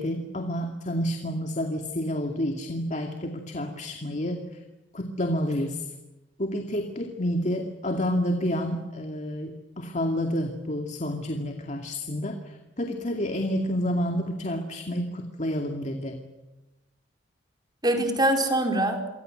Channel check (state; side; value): normal; both; correlation 0.57